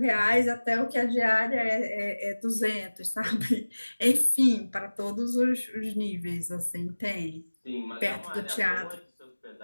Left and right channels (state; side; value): inverted; both; correlation -1.00